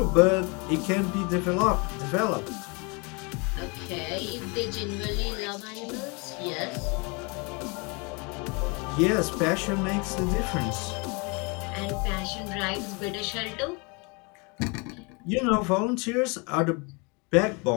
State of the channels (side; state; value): right; quieter; 30.6 dB